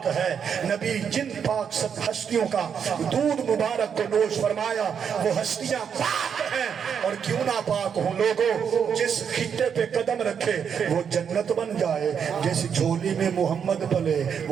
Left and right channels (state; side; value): quieter; left; 7.4 dB